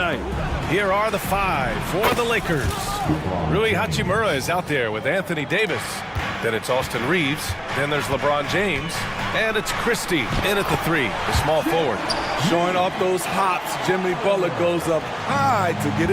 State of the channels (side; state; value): both; identical; correlation 1.00